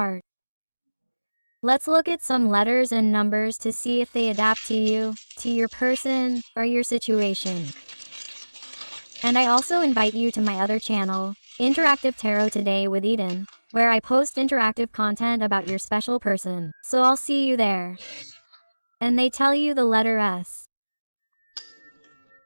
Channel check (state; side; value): inverted; both; correlation -1.00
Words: Let's look at some letters and numbers to see if they adapt to you, to your person, or your situation. And I also invite you to my other channel, Interactive Tarot Today with Eden, where I post interactive content about your special person. So I'll see you there. And they tell you the letter S.